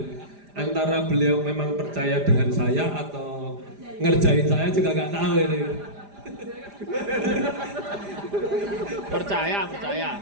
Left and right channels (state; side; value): late; left; 5.0 ms